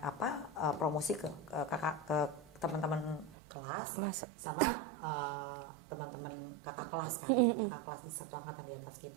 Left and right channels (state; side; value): drops out; left; at 3.4 s